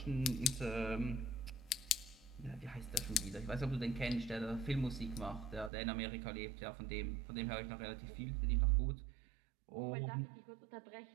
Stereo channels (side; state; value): left; drops out; at 5.7 s